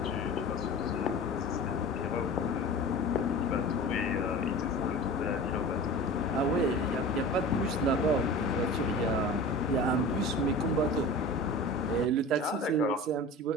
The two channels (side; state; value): both; normal; correlation 0.35